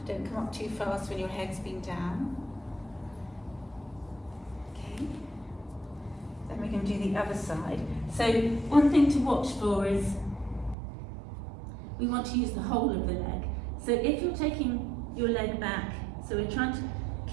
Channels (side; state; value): left; drops out; at 10.8 s